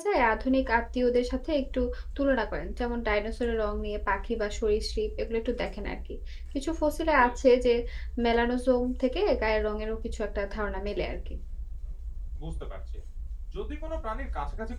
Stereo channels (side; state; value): both; identical; correlation 1.00